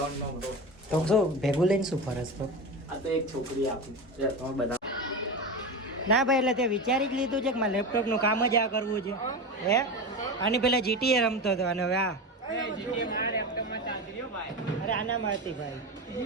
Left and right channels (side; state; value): both; normal; correlation 0.23